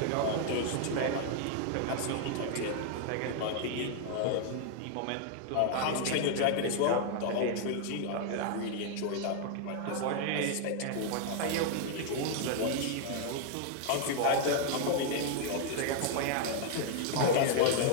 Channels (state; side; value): different; both; correlation 0.00